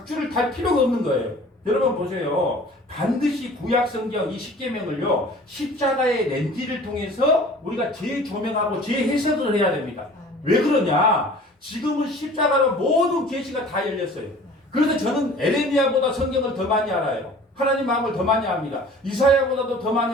달 필요가 없는 거예요. 여러분 보세요. 반드시 구약 성경 이 십계명을요 십자가의 렌즈를 통해서 우리가 재조명하고 재해석을 해야 됩니다. 왜 그러냐? 지금은 십자가로 모든 계시가 다 열렸어요. 그래서 저는 에레미야보다 성경을 더 많이 알아요. 하나님 마음을 더 많이 압니다. 이사야보다도 더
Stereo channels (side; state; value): both; normal; correlation 0.47